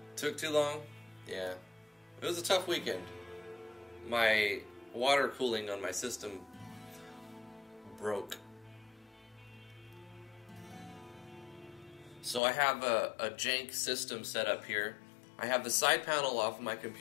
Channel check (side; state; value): right; drops out; at 12.4 s